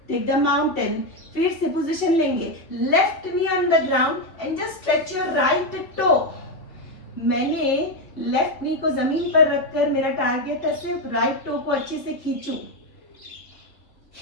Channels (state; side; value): late; right; 3.0 ms